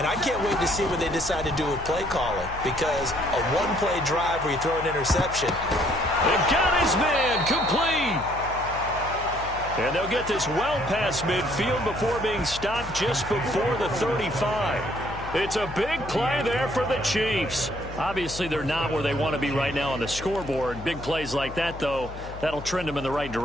I can't wait to see what they decide to do with play calling, because a 1-play drive where you throw an interception. They've got his man complete. And they'll get this well past midfield before being stopped just before the 35. It's a big play there for the Chiefs. Obviously, they're not where they want to be right now on the scoreboard. Big plays like that, though, that'll trend them in the right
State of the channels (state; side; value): noise; left; hum, 12 dB below the sound